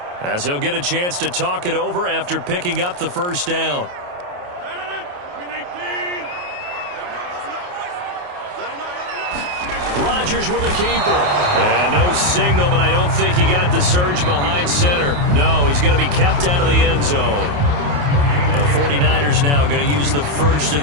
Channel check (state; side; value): late; left; 28 ms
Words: as they'll get a chance to talk it over after picking up the 1st down. Rodgers with a keeper. And no signal, but I don't think he got the surge behind center. No, he's going to be kept out of the end zone. 49ers now going to use the first of